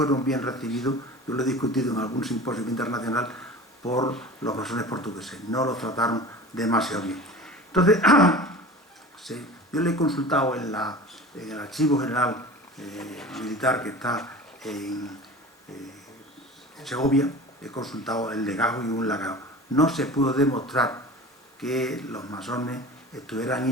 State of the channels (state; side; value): normal; both; correlation 0.37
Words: bien recibidos, yo lo he discutido en algún simposio internacional, por los masones portugueses. No los trataron demasiado bien. Entonces, yo le he consultado en el Archivo General Militar que está en Segovia, he consultado el legajo y un legado. No se pudo demostrar que los masones estuvieran